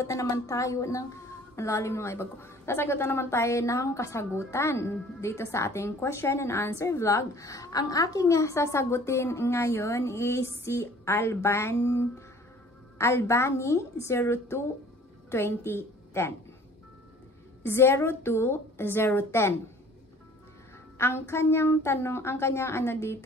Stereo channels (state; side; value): normal; both; correlation 0.51